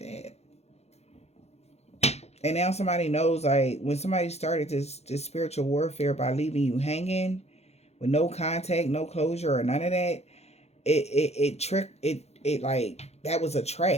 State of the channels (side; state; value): right; late; 0.31 ms